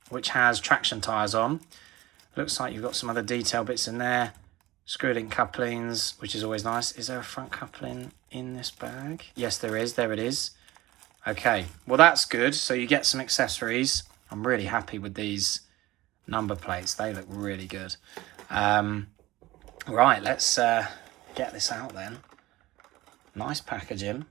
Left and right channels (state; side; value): quieter; left; 17.9 dB